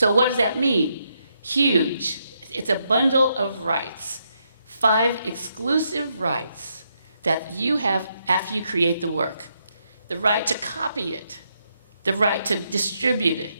what does that mean? Huge. It's a bundle of rights. 5 exclusive rights that you have after you create the work. The right to copy it, the right to distribute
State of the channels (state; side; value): inverted; both; correlation -0.78